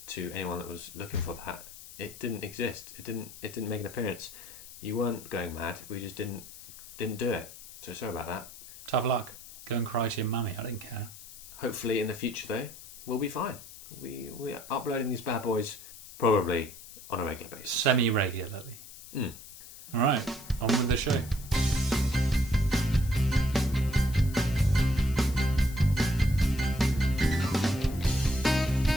to anyone that was looking for that. It didn't exist. It didn't make an appearance. You weren't going mad. We just didn't do it. So sorry about that. Tough luck. Go and cry to your mummy. I don't care. Hopefully in the future though, we'll be fine. We are uploading these bad boys probably on a regular basis. Semi-regularly. Alright, on with the show.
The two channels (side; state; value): left; noise; hiss, 16 dB below the sound